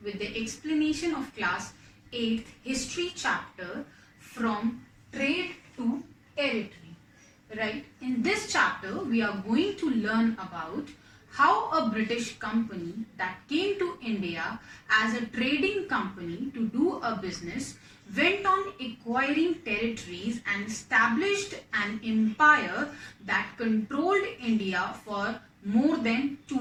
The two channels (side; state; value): both; identical; correlation 1.00